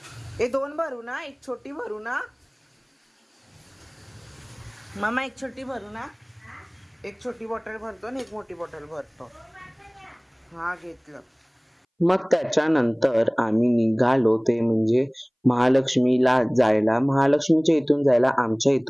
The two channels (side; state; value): both; identical; correlation 1.00